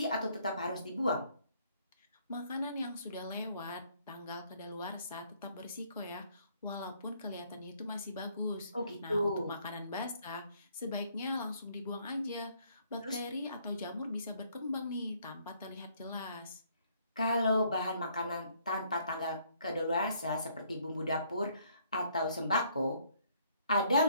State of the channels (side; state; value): both; inverted; correlation -0.66